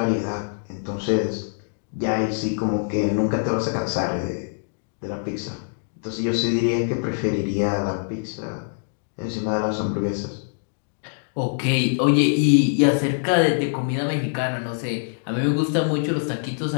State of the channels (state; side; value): silent; right; digital silence